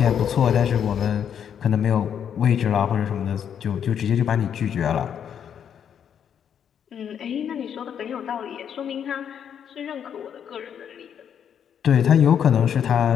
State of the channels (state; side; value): quieter; right; 8.5 dB